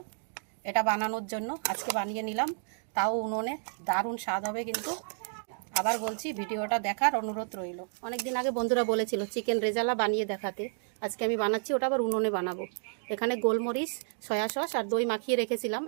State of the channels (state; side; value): silent; left; digital silence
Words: এটা বানানোর জন্য, আজকে বানিয়ে নিলাম, তাও উনুনে। দারুণ স্বাদ হবে কিন্তু। আবার বলছি, ভিডিওটা দেখার অনুরোধ রইল। অনেক দিন আগে বন্ধুরা বলেছিল চিকেন রেজালা বানিয়ে দেখাতে, আজকে আমি বানাচ্ছি, ওটা আবার উনুনে বানাবো। এখানে গোলমরিচ, সয়া সস আর দই মাখিয়ে রেখেছিলাম,